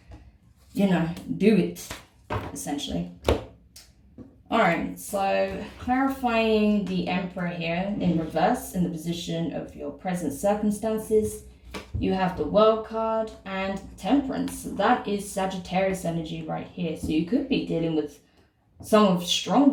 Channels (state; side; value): identical; both; correlation 1.00